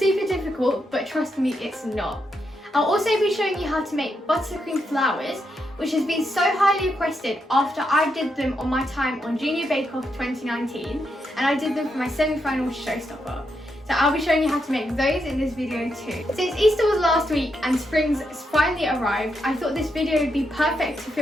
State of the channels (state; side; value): normal; both; correlation 0.82